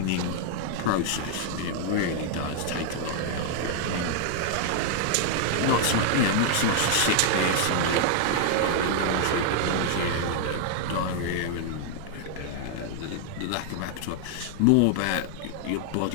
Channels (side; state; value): both; different; correlation 0.00